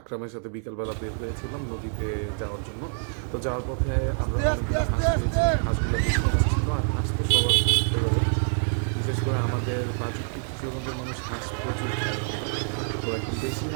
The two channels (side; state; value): left; silent; 56 dB below the other